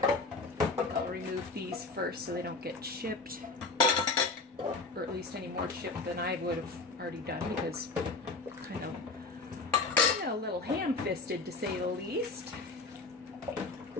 I'll remove these first so they don't get chipped, or at least any more chipped than I would have already done, because kind of a little ham-fisted, to say the least.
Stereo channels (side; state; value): right; quieter; 3.8 dB